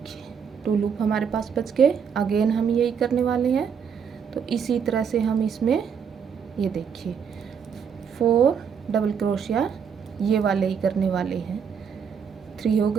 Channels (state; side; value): quieter; left; 7.0 dB